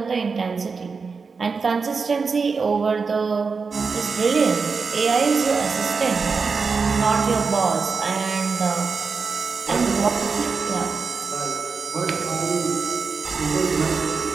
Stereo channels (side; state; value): left; quieter; 4.9 dB